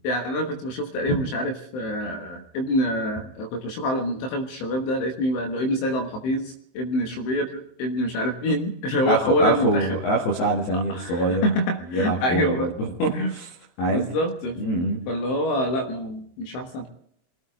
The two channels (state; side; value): late; right; 23 ms